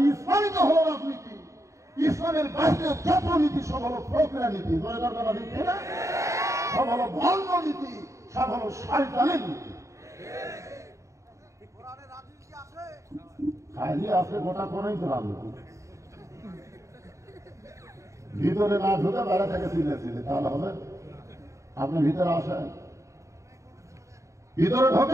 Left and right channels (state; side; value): late; left; 0.15 ms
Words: ইসলামই তো হলো রাজনীতি। ইসলামের বাইরে যত নীতি সব হলো ফকরা নীতি। নীতি না, সব হলো ভণ্ড নীতি, সব হলো শয়তানের নীতি। খালি আছে গোটা কোনই তো রাজনীতি। ভিতরে না ঢুকে বাইরে থেকে চিল্লে তাহলে হবে? আপনি ভিতরে আসেন, ভিতরে